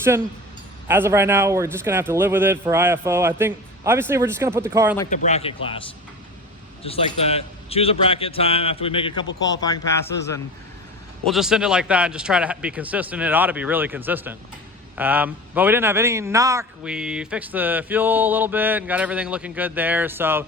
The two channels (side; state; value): both; normal; correlation 0.33